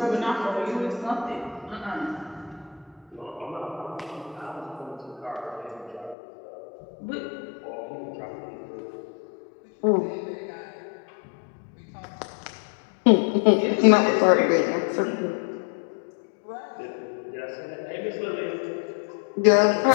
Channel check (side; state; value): right; drops out; at 6.2 s